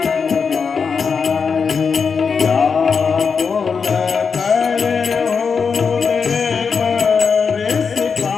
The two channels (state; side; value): quieter; right; 5.7 dB